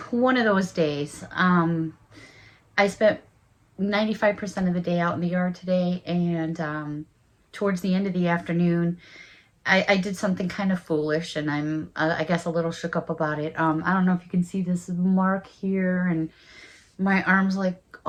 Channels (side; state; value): both; identical; correlation 1.00